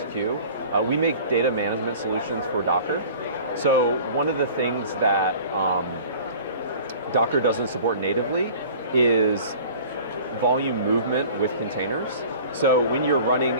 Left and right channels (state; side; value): inverted; both; correlation -0.44